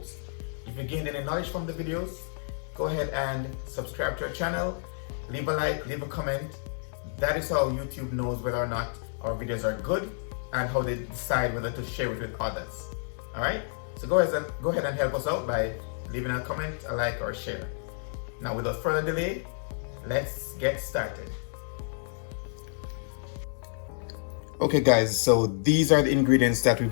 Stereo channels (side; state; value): right; silent; 58 dB below the other